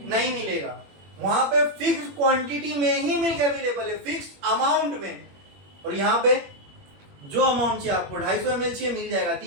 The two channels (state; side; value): late; left; 21 ms